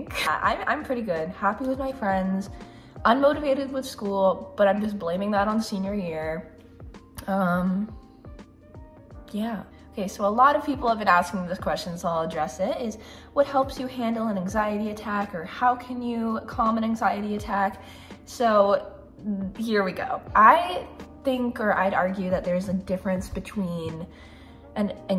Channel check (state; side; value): identical; both; correlation 1.00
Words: I'm pretty good, happy with my friends, unmotivated with school, but I'm just blaming that on senior year. Yeah. Okay, so a lot of people have been asking me this question, so I'll address it, is what helps you handle an anxiety attack, or how can you calm an anxiety attack? So here we go. I think, or I'd argue, that there's a difference between an